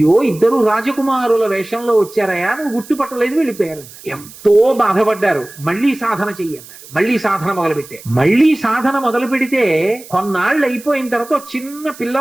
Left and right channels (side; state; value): right; noise; hiss, 19 dB below the sound